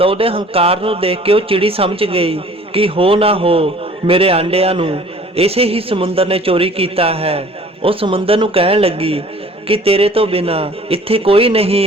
ਉਹਦੇ ਹੰਕਾਰ ਨੂੰ ਦੇਖ ਕੇ ਉਹ ਚਿੜੀ ਸਮਝ ਗਈ ਕਿ ਹੋ ਨਾ ਹੋ ਮੇਰੇ ਆਂਡਿਆਂ ਨੂੰ ਇਸੇ ਹੀ ਸਮੁੰਦਰ ਨੇ ਚੋਰੀ ਕੀਤਾ ਹੈ। ਉਹ ਸਮੁੰਦਰ ਨੂੰ ਕਹਿਣ ਲੱਗੀ ਕਿ ਤੇਰੇ ਤੋਂ ਬਿਨਾ ਇੱਥੇ ਕੋਈ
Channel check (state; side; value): normal; both; correlation 0.51